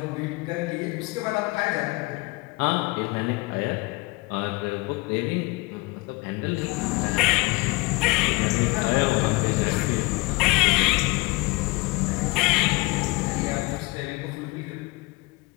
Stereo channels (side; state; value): right; quieter; 24.3 dB